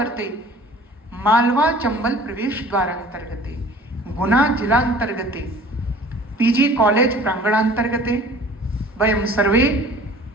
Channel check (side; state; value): both; normal; correlation 0.47